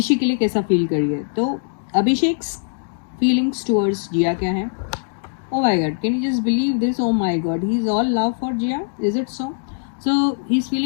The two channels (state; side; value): silent; right; digital silence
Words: के लिए कैसा फील करिए। तो अभिषेक फीलिंग्स टुवर्ड्स जिया क्या है? Oh my God, can you just believe this? Oh my God, he's all love for Jia. Is it so? So he's